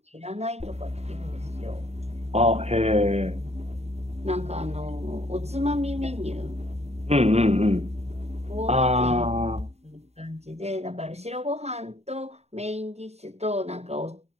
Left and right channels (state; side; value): late; left; 0.31 ms